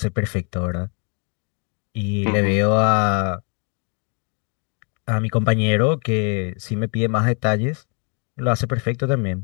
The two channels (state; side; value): quieter; right; 38.2 dB